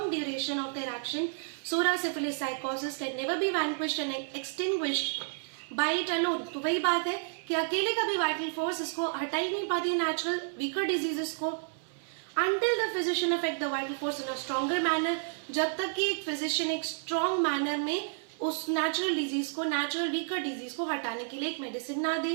duration of their action, psora, syphilis, sycosis can never be vanquished and extinguished by it alone. तो वही बात है कि अकेले का भी वाइटल फोर्स इसको हटा ही नहीं पाती नेचुरल वीकर डिजीजेस को, until the physician affect the vital force in a stronger manner, जब तक कि एक फिजिशियन एक स्ट्रॉन्ग मैनर में उस नेचुरल डिजीज को, नेचुरल वीकर डिजीज को हटाने के लिए एक मेडिसिन ना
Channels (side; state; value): left; silent; 57 dB below the other